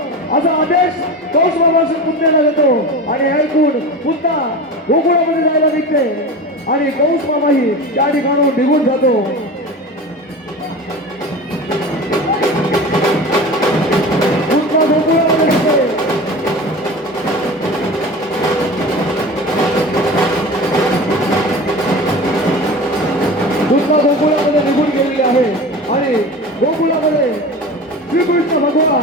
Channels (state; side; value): normal; both; correlation 0.32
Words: आदेश कंस मामाच्या पुतण्याला देतो. आणि ऐकून पुतना गोकुळामध्ये जायला निघते आणि कंस मामाही त्या ठिकाणून निघून जातो. पुतना गोकुळामध्ये निघते. पुतना गोकुळामध्ये निघून गेलेली आहे आणि गोकुळामध्ये श्रीकृष्ण